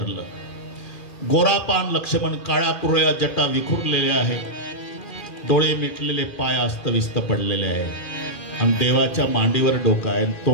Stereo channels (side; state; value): right; late; 2.4 ms